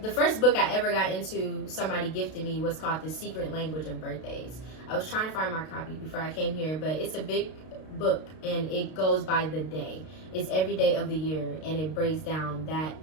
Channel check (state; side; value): late; right; 32 ms